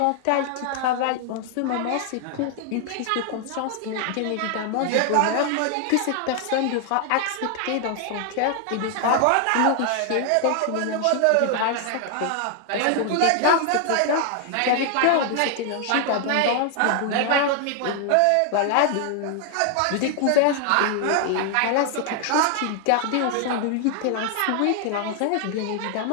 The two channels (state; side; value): different; both; correlation 0.00